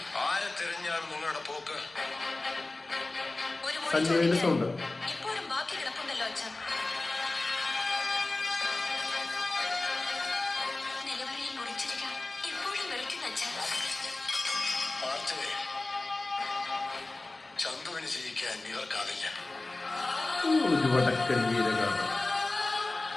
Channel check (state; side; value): quieter; right; 3.1 dB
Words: ആരെ തിരഞ്ഞാണ് നിങ്ങളുടെ പോക്ക്? സഞ്ജയന്റെ സൗണ്ട്. ചന്തുവിന് ജയിക്കാൻ ഇവർക്കാവില്ല. ഒരു വടക്കൻ വീരഗാഥ.